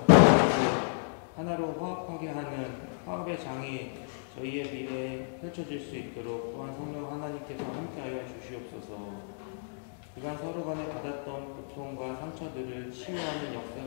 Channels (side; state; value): right; silent; digital silence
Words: 하나로 화합하게 하는 화합의 장이 저희의 미래에 펼쳐질 수 있도록 또한 성령 하나님께서 함께하여 주시옵소서. 그간 서로 간에 받았던 고통과 상처들을 치유하는